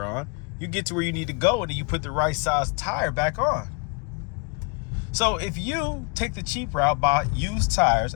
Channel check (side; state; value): right; quieter; 30.8 dB